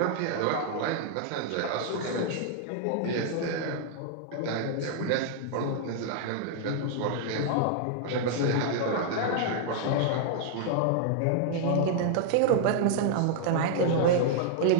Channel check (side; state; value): both; different; correlation 0.00